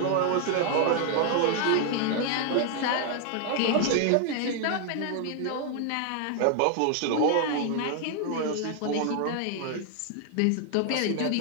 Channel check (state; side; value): different; both; correlation 0.00